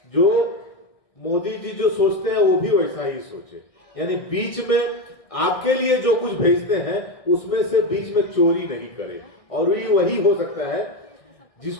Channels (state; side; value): late; right; 1.6 ms